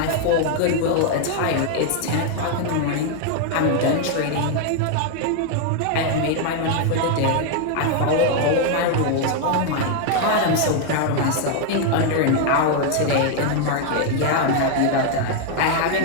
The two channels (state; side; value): different; both; correlation 0.00